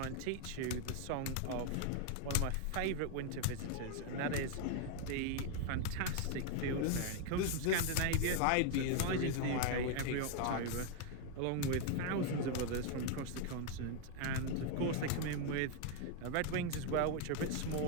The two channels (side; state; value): both; different; correlation 0.01